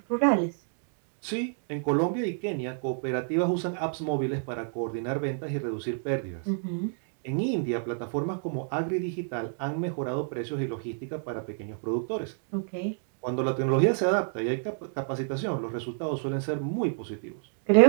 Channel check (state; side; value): silent; left; digital silence